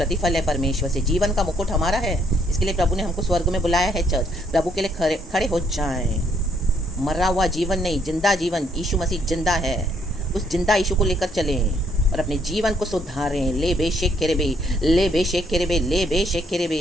है परमेश्वर से। जीवन का मुकुट हमारा है, इसके लिए प्रभु ने हमको स्वर्ग में बुलाया है। चर्च, प्रभु के लिए खड़े हो जाएं। मरा हुआ जीवन नहीं, जिंदा जीवन। यीशु मसीह जिंदा है, उस जिंदा यीशु को लेकर चलें और अपने जीवन को सुधारें। ले बेशेक केरेबे, ले बेशेक केरेबे, ले बेशेक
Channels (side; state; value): both; normal; correlation 0.69